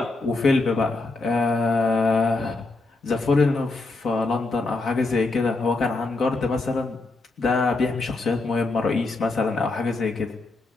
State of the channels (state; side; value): quieter; right; 3.4 dB